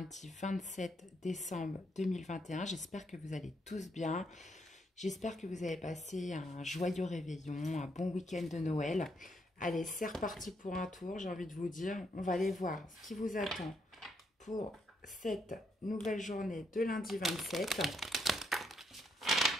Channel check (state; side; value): normal; both; correlation 0.76